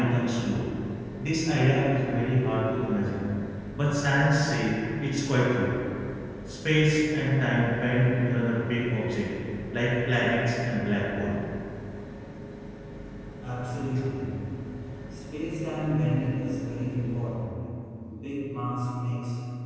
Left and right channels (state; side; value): identical; both; correlation 1.00